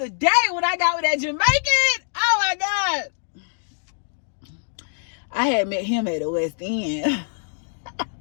day when I got with that Jamaican. Oh my God. I had met him at the West End.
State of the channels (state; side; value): silent; right; digital silence